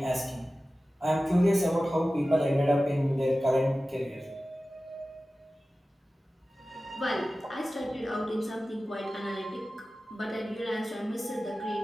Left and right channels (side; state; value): both; normal; correlation 0.95